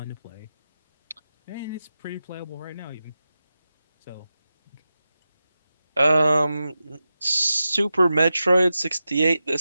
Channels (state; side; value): inverted; both; correlation -0.92